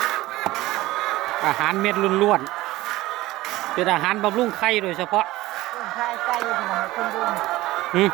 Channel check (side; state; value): left; quieter; 17.8 dB